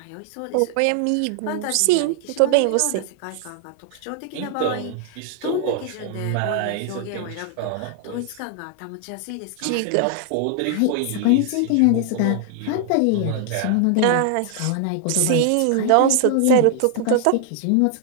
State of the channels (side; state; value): both; different; correlation 0.00